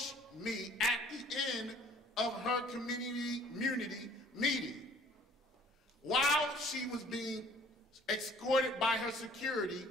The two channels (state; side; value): normal; both; correlation 0.54